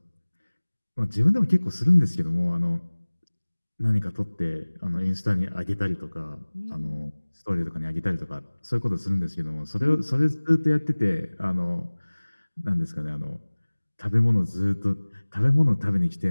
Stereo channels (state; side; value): inverted; both; correlation -1.00